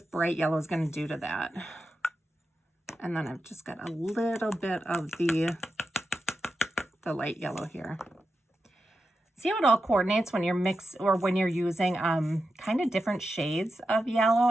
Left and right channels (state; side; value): normal; both; correlation 0.89